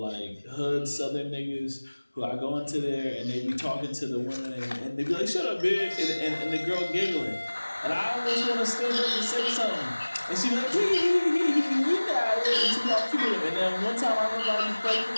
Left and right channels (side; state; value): both; inverted; correlation -1.00